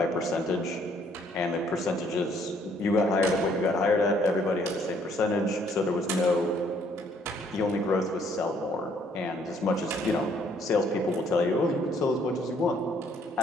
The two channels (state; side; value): normal; both; correlation 0.64